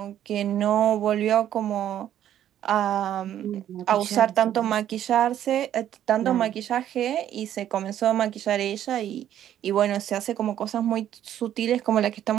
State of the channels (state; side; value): quieter; left; 11.1 dB